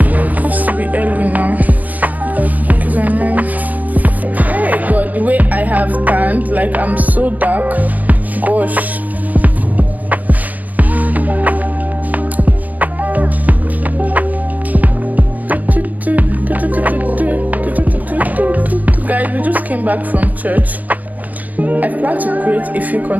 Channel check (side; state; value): left; late; 0.079 ms